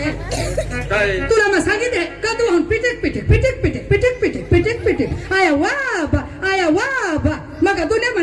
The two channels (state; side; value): identical; both; correlation 1.00